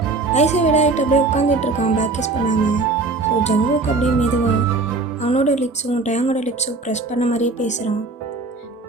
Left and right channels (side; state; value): left; quieter; 3.6 dB